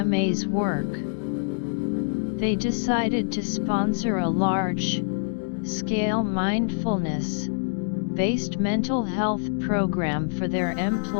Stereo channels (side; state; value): right; silent; digital silence